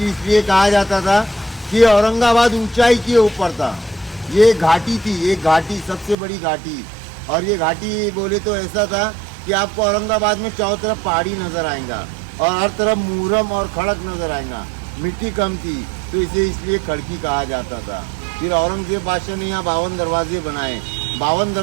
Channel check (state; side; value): drops out; left; at 6.2 s